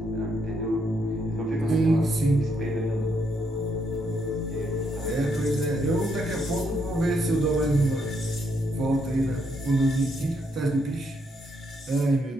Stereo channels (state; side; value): normal; both; correlation 0.76